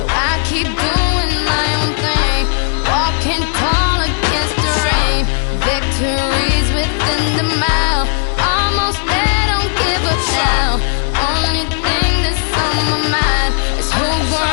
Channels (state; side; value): silent; right; digital silence